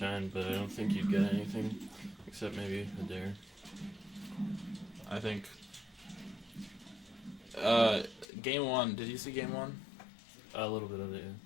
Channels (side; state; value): right; drops out; at 8.2 s